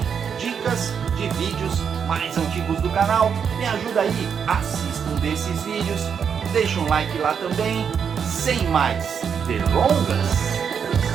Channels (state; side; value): quieter; left; 7.1 dB